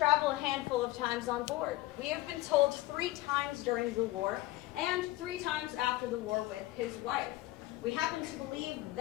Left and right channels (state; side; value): quieter; right; 17.5 dB